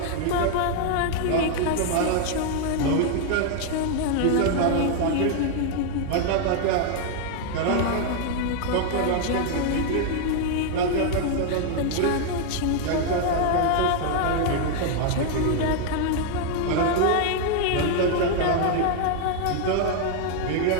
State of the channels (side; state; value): both; different; correlation 0.00